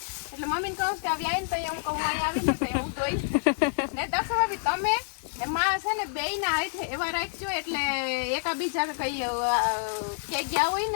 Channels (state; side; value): silent; right; digital silence